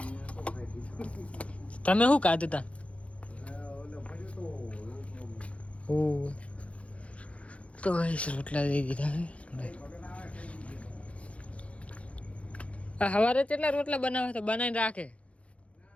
તમે શું ખાધું તા ઓ તો રોટલા દઈ દીધા હે આ સવારે કેટલા રોટલા બનાવે તો બનાવીને રાખે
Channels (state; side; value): late; right; 0.063 ms